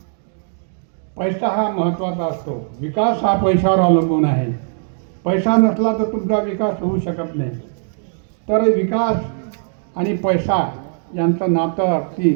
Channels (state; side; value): silent; left; digital silence